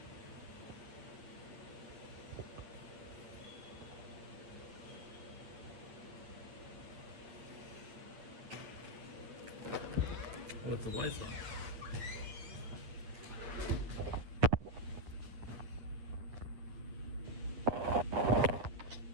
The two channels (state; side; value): late; left; 8.9 ms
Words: With the lights on.